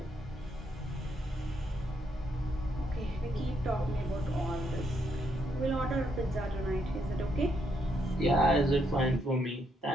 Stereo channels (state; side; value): normal; both; correlation 0.76